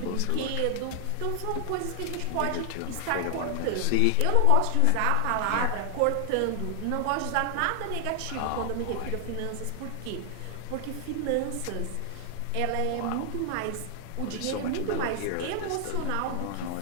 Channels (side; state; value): both; different; correlation 0.00